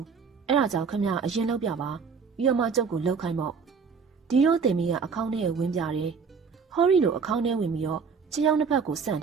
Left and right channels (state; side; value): quieter; left; 5.6 dB